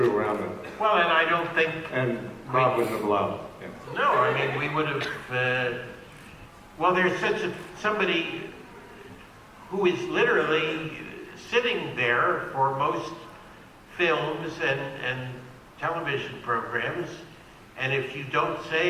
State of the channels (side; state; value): both; identical; correlation 1.00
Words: around with. Well, and I don't think. And Rob wouldn't have allowed it. Yeah. No, I mean we would have. Well, there's somebody who is literally sitting there for most films and television programs, and if you don't